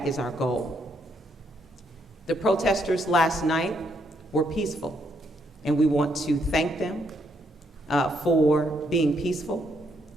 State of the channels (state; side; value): normal; both; correlation 0.74